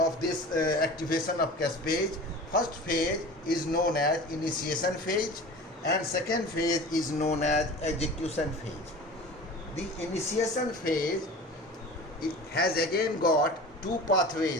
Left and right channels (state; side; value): normal; both; correlation 0.37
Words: this activation of caspase. First phase is known as initiation phase, and second phase is known as execution phase. The initiation phase, it has again got two